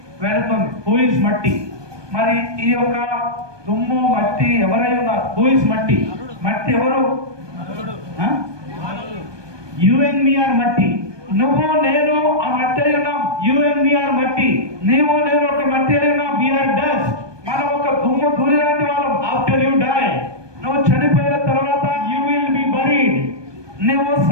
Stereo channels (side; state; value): left; late; 1.2 ms